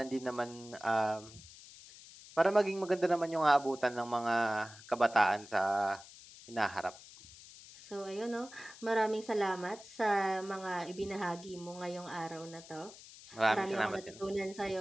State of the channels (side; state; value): left; noise; hiss, 18 dB below the sound